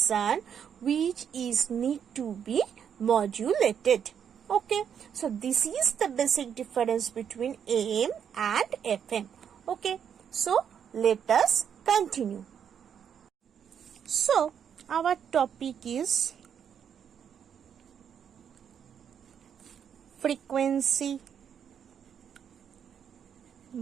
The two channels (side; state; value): left; quieter; 8.1 dB